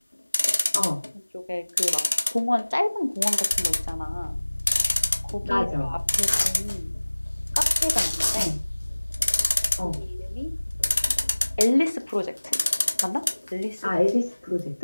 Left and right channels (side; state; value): both; inverted; correlation -1.00